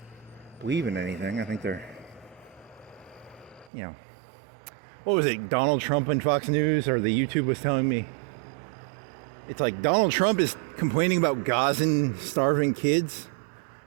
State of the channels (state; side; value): drops out; left; at 3.7 s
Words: believe in anything. I think they're, you know, what was it, Donald Trump and Fox News, or the YouTube was telling me, it's like Donald Trump is complaining about Gazan starving kids.